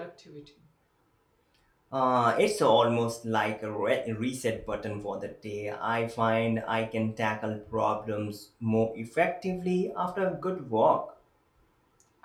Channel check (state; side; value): identical; both; correlation 1.00